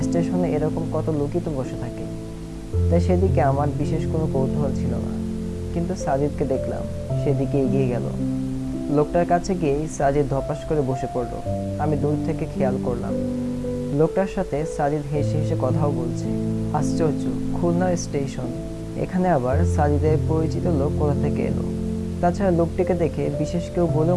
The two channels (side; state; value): both; identical; correlation 1.00